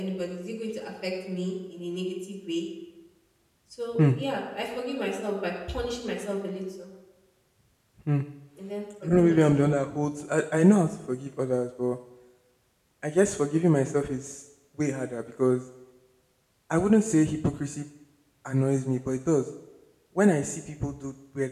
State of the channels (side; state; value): both; identical; correlation 1.00